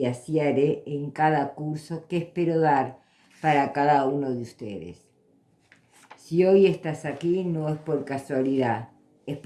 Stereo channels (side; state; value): both; identical; correlation 1.00